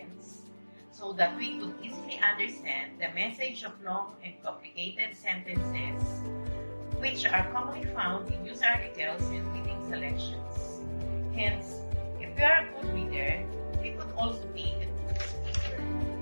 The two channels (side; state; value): both; inverted; correlation -1.00